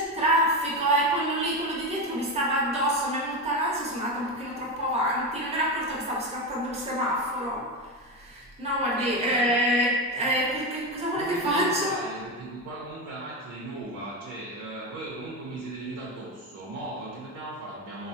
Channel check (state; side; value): normal; both; correlation 0.16